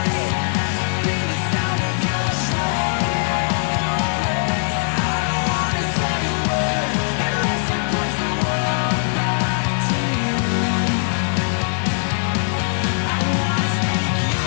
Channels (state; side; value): silent; right; 59 dB below the other